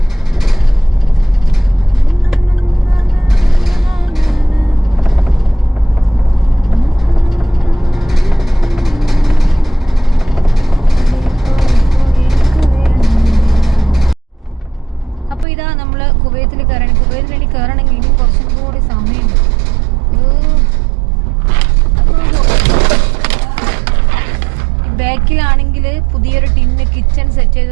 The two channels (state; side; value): drops out; left; at 15.5 s